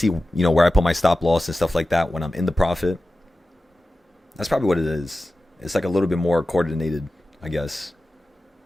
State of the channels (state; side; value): normal; both; correlation 0.94